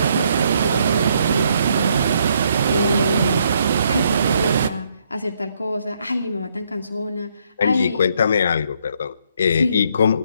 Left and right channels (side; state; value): both; inverted; correlation -0.71